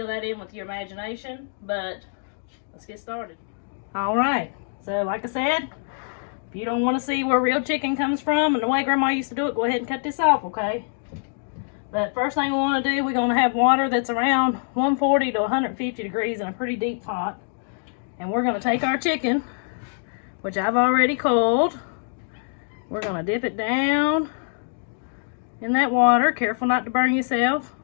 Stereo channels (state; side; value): silent; right; digital silence